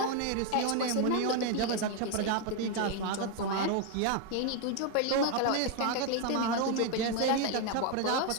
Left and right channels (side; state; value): both; different; correlation 0.01